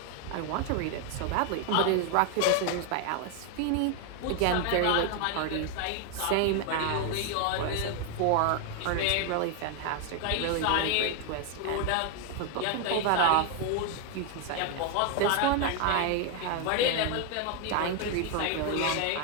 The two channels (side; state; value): both; different; correlation 0.01